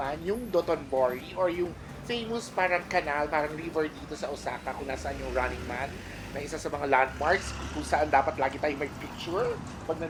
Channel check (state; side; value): identical; both; correlation 1.00